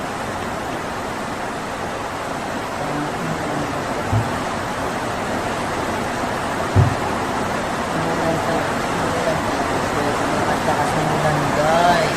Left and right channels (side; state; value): both; identical; correlation 1.00